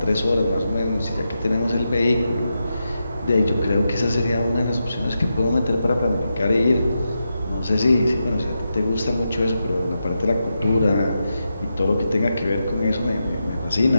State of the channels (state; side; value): inverted; both; correlation -0.87